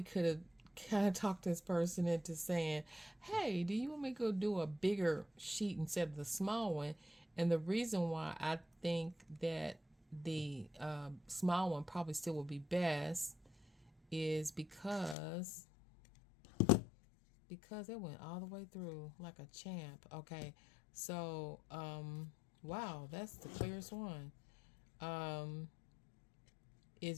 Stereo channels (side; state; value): right; drops out; at 15.2 s